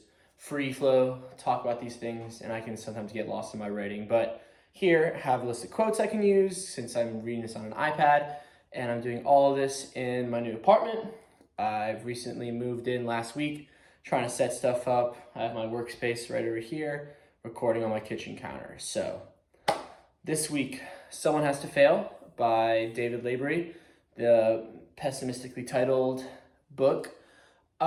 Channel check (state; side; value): identical; both; correlation 1.00